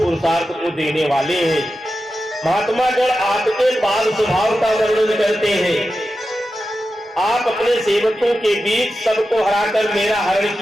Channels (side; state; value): both; normal; correlation 0.91